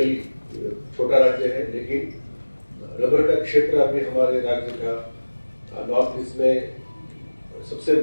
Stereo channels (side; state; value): both; inverted; correlation -1.00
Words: छोटा राज्य है लेकिन रबर का क्षेत्र अभी हमारे राज्य का नॉर्थ ईस्ट में सबसे